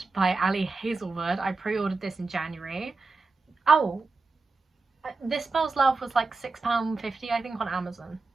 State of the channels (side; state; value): left; quieter; 3.9 dB